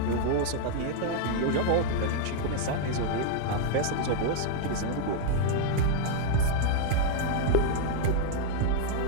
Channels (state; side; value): different; both; correlation -0.01